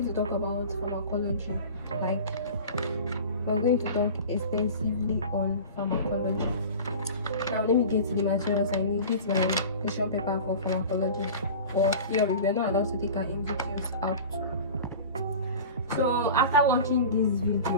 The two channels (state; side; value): inverted; both; correlation -0.36